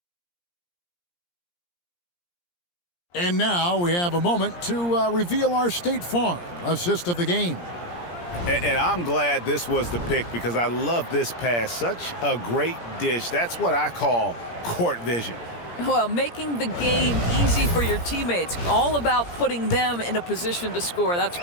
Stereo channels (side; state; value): right; late; 17 ms